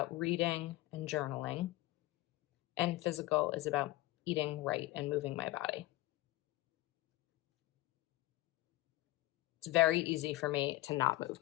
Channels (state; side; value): quieter; right; 17.7 dB